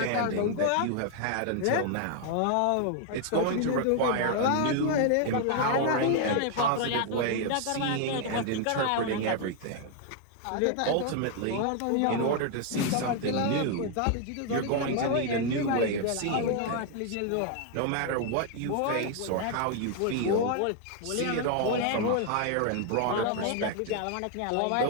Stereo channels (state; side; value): different; both; correlation 0.00